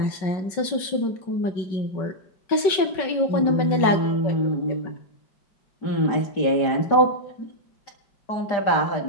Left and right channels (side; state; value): right; late; 5.3 ms